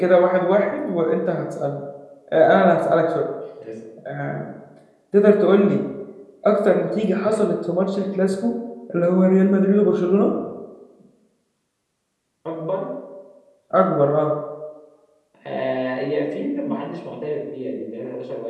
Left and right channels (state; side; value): identical; both; correlation 1.00